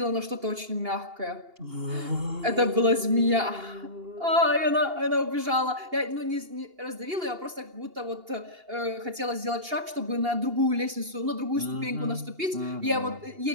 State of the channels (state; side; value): late; left; 2.8 ms